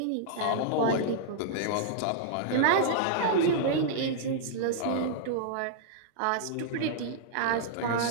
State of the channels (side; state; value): both; different; correlation -0.02